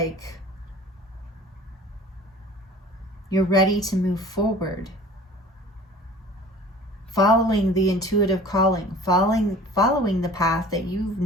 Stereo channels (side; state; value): both; normal; correlation 0.44